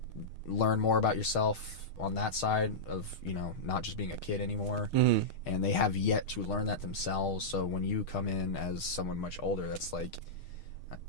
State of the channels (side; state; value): right; late; 6.5 ms